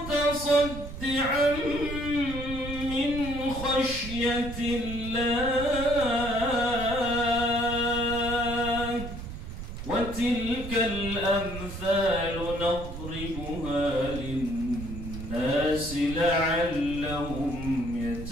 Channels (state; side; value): noise; right; rumble, 9 dB below the sound